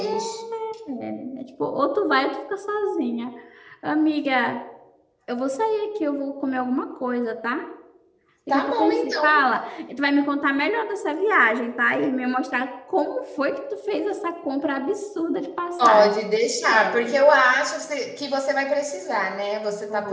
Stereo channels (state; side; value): identical; both; correlation 1.00